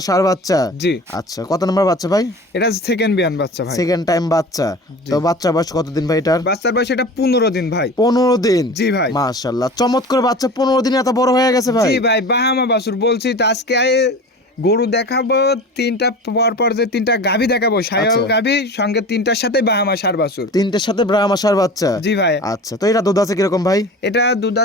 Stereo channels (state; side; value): normal; both; correlation 0.36